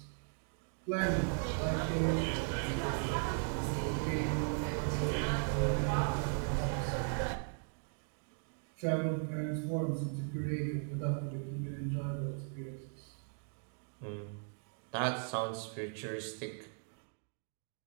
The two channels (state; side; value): silent; left; 53 dB below the other